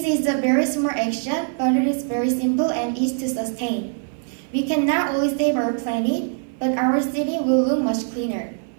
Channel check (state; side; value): silent; left; 58 dB below the other